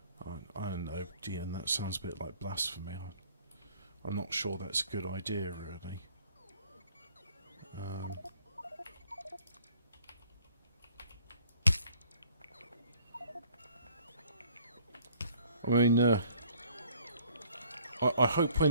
I don't know, Dean, that sounds a bit like blasphemy. I'm not sure that's a good idea, really. I mean, I hope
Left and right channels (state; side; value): inverted; both; correlation -0.59